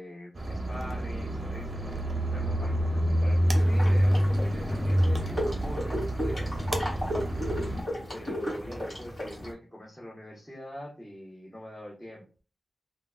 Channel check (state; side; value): normal; both; correlation 0.94